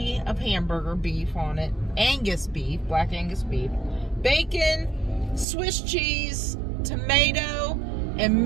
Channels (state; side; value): drops out; left; at 5.5 s